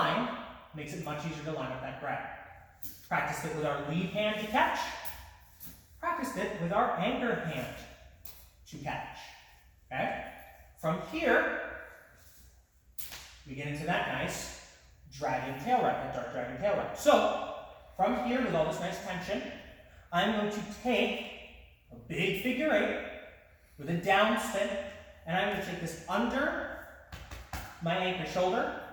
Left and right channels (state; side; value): identical; both; correlation 1.00